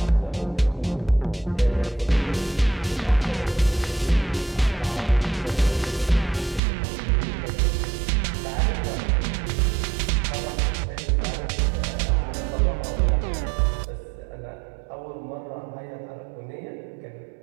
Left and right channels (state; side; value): drops out; left; at 6.6 s